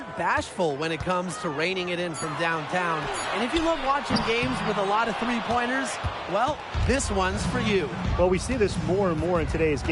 bashful when it comes to reining it in from downtown. And if you love watching games with a lot of three-pointers, well, this one's for you. Well, we see this more and more in today's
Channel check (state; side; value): identical; both; correlation 1.00